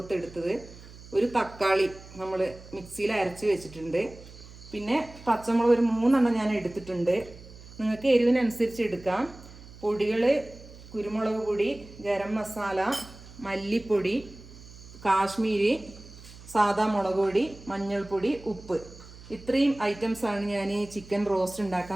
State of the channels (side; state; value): right; noise; hum, 18 dB below the sound